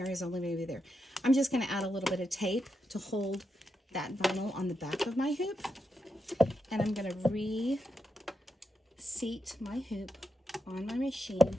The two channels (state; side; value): normal; both; correlation 0.85